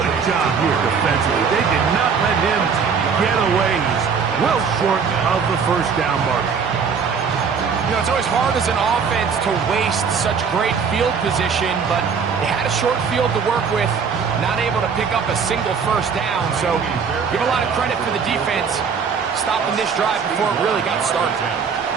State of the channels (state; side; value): quieter; left; 6.1 dB